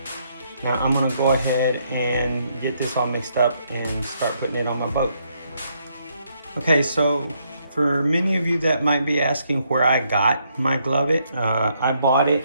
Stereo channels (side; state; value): both; inverted; correlation -0.74